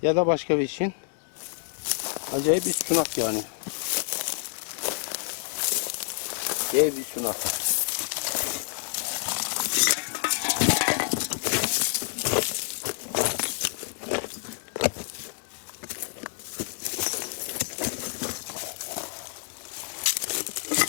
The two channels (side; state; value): right; silent; digital silence